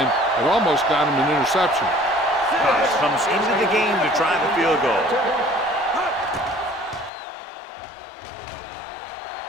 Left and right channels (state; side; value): drops out; right; at 7.1 s